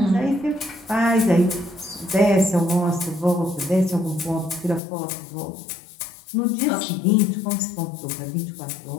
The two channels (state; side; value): drops out; right; at 4.8 s